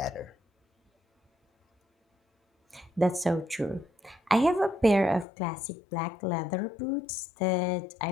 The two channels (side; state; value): right; drops out; at 5.2 s